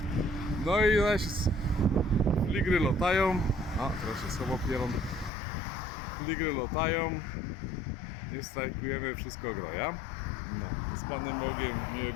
No i zaś fligry latają, a teraz się słowo pierą, fligry latają, nie strajkujemy, wszystko groja. No, z Panem Bogiem,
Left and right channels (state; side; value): drops out; right; at 5.3 s